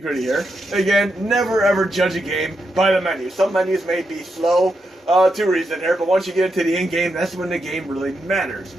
here. Again, never ever judge a game by the menu. Some menus may be slow to reason here, but once you get into the in-game, that's when the game really matters.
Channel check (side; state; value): both; normal; correlation 0.84